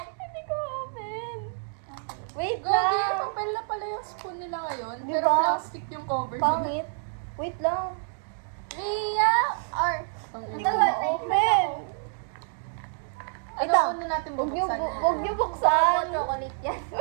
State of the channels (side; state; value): left; silent; digital silence